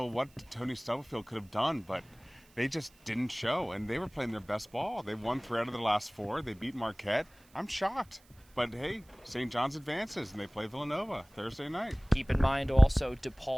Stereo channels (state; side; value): noise; right; hiss, 29 dB below the sound